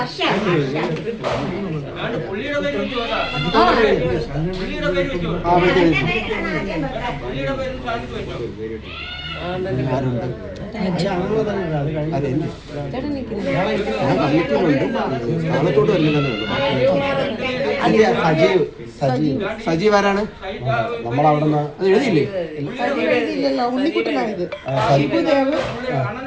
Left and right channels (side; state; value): both; identical; correlation 1.00